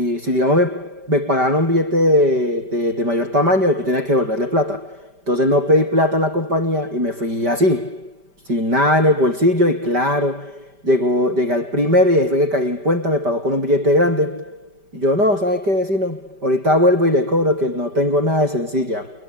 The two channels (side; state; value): left; late; 5.1 ms